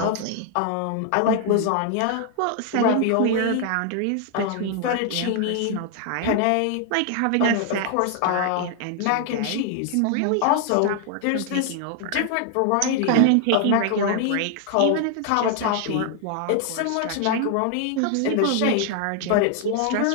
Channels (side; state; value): both; different; correlation 0.00